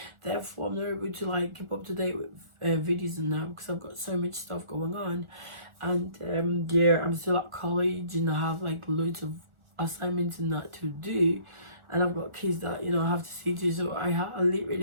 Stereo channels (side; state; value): left; late; 1.4 ms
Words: Therefore, I'm not able to like keep up to date with videos and that because I've got so much stuff going on. And yeah, I'm still at college and I have like loads of assignments and that to do, and I've got kids that I have to see to, so I